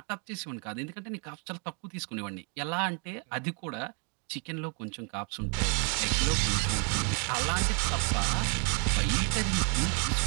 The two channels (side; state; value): left; quieter; 38.0 dB